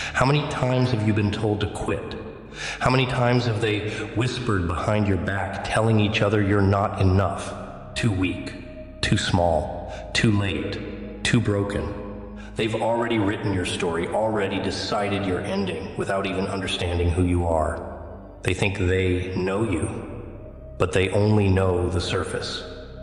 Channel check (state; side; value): identical; both; correlation 1.00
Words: many times have you been told to quit? How many times have they whispered behind your back, telling each other you're not enough, too weak, too small, too late, too broken? They've already written your story, already decided your ending without even understanding who you are. They think they know you, but they only know the surface.